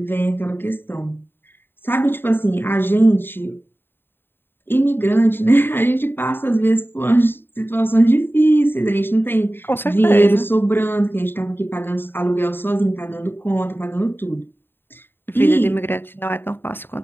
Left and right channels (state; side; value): late; right; 0.10 ms